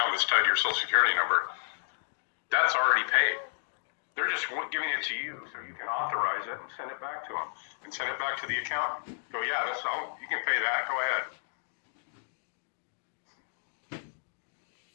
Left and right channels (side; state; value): right; silent; digital silence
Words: that's tied to your Social Security number, that's already paid. They're just giving it to you so you can authorize it and send it back to them and send it back to the accountant. Go, yeah, that's all. You can pay that. Go ahead.